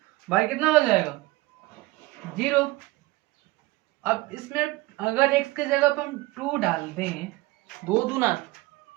y कितना हो जाएगा 0। अब इसमें अगर x के जगह पर हम 2 डाल दें, 2 दूना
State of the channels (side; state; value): left; quieter; 20.6 dB